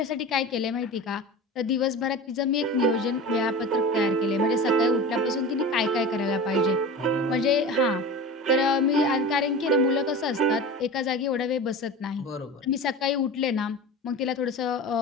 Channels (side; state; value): both; normal; correlation 0.32